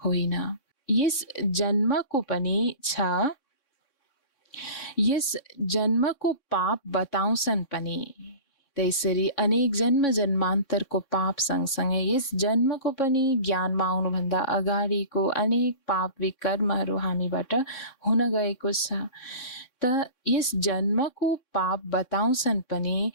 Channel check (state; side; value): late; right; 3.6 ms